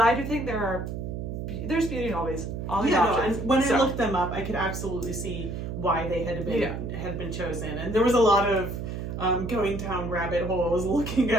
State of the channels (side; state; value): right; noise; hum, 5 dB below the sound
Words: do think there's beauty in all these options. And when I looked them up, I could absolutely see why they had been chosen. And there was a lot of going down rabbit holes looking